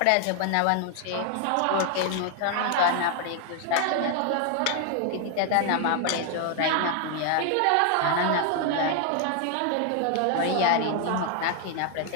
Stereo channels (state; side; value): different; both; correlation 0.00